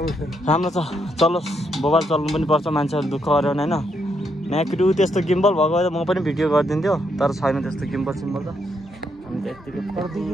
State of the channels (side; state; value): both; normal; correlation 0.77